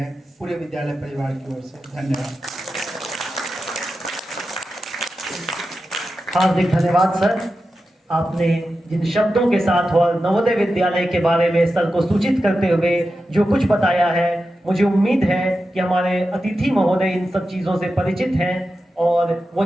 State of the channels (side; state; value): both; normal; correlation 0.91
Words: पूरे विद्यालय परिवार की ओर से। धन्यवाद। हार्दिक धन्यवाद सर, आपने जिन शब्दों के साथ और नवोदय विद्यालय के बारे में सर को सूचित करते हुए जो कुछ बताया है, मुझे उम्मीद है कि हमारे अतिथि महोदय इन सब चीज़ों से परिचित हैं और वो